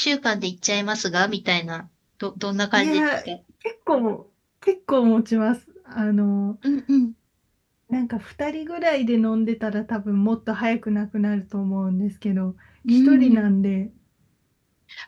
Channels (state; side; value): identical; both; correlation 1.00